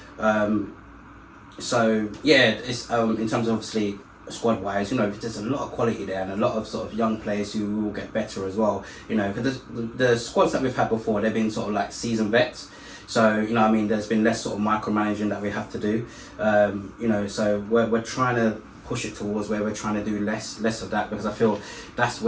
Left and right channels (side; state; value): both; identical; correlation 1.00